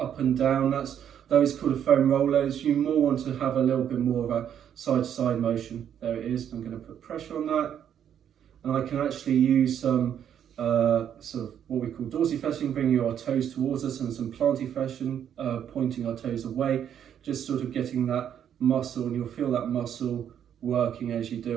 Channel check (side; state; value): left; quieter; 9.3 dB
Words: and down. Those called a foam rollers. You more want to have a little bit more of a side to side motion. There it is. I'm going to put pressure on that. And I can actually use some sort of what we call dorsiflexing, bringing our toes towards us, and some plantiflexion, pointing our toes away. Just sort of getting that muscle, and you'll feel that muscle working as you